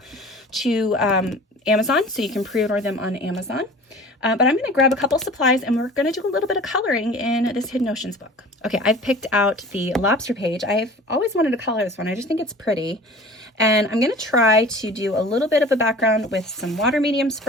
to Amazon, so you can pre-order them on Amazon. But I'm going to grab a couple supplies, and we're going to do a little bit of coloring in this Hidden Oceans book. Okay, I've picked out the lobster page. I've always wanted to color this one. I just think it's pretty. And I'm going to try to do a little bit of a background with some water mediums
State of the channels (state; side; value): normal; both; correlation 0.42